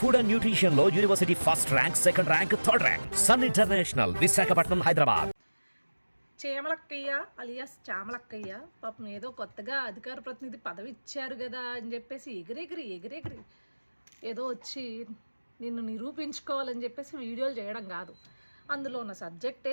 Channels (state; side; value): inverted; both; correlation -1.00